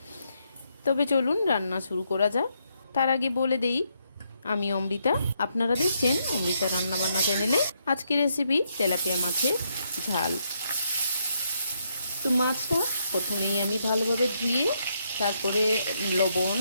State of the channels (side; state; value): both; inverted; correlation -0.77